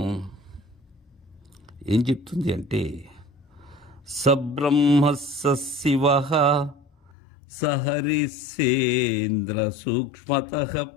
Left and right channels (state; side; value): drops out; right; at 7.1 s